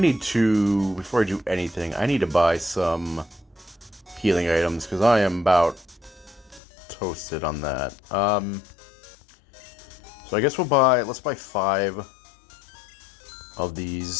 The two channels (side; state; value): right; drops out; at 6.6 s